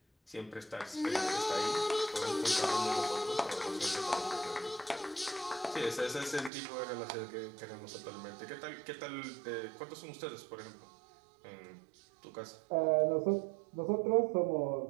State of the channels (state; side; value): drops out; left; at 6.5 s